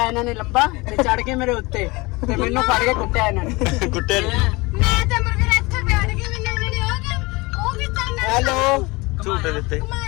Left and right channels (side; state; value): right; quieter; 24.0 dB